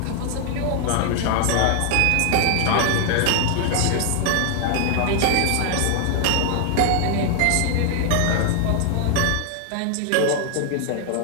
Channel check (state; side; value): different; both; correlation 0.00